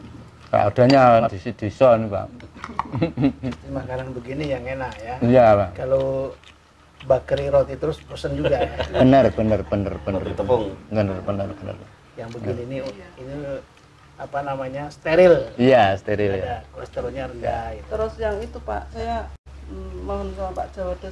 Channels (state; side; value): identical; both; correlation 1.00